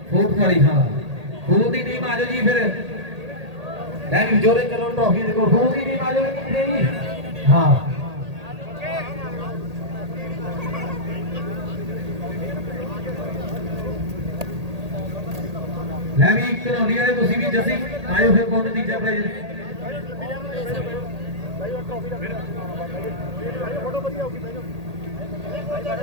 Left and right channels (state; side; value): late; left; 1.8 ms